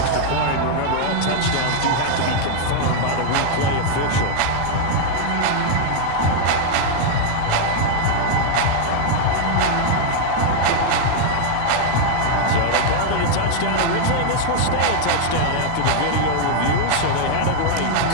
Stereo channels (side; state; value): both; different; correlation 0.00